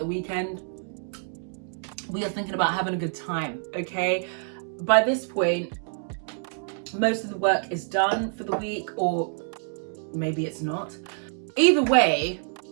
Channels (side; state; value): left; silent; 60 dB below the other